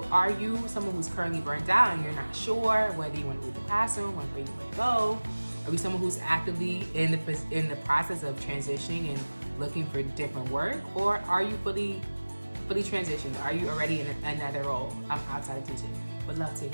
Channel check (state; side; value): inverted; both; correlation -1.00